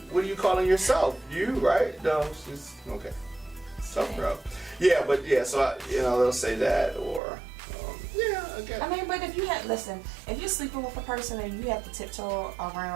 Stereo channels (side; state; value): left; drops out; at 7.2 s